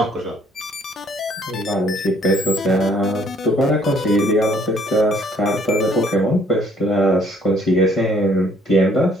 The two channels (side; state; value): both; normal; correlation 0.63